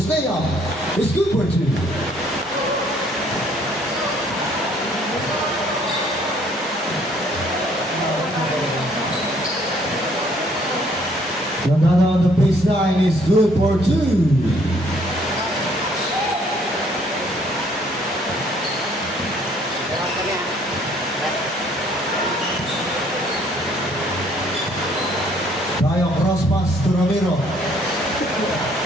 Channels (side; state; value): both; normal; correlation 0.63